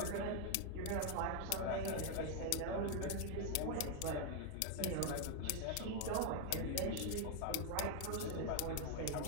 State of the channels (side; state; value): both; different; correlation 0.00